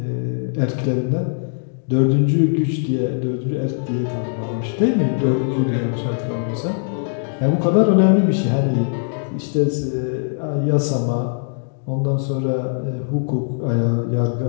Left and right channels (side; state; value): right; silent; digital silence